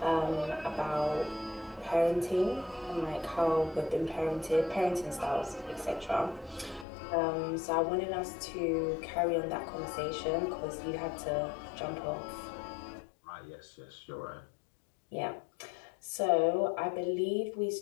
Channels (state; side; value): drops out; right; at 6.9 s